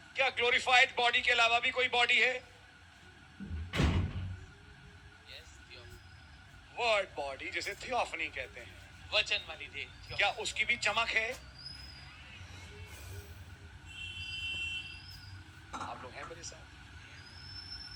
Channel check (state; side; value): identical; both; correlation 1.00